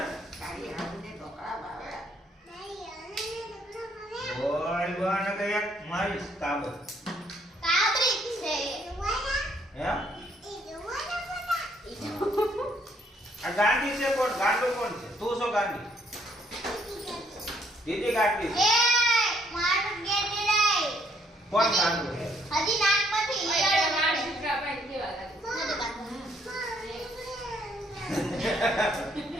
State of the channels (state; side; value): normal; both; correlation 0.68